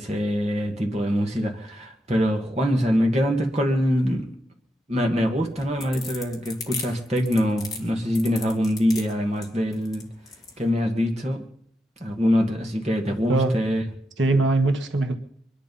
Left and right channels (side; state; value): both; normal; correlation 0.84